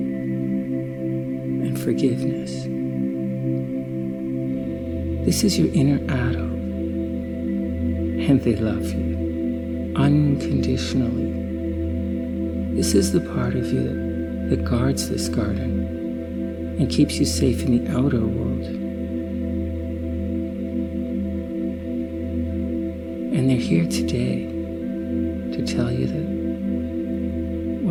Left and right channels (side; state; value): both; identical; correlation 1.00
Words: and forgiveness. This is your inner adult, and they love you unconditionally. This is the part of you that guards this garden and keeps you safe in the outer world. And they're here today to tell you